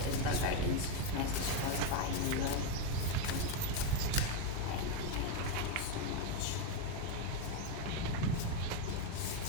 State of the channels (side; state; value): both; different; correlation 0.03